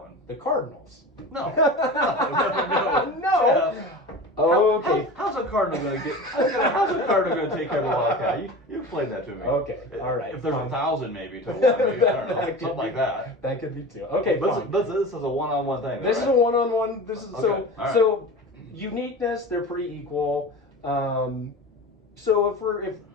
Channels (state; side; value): normal; both; correlation 0.32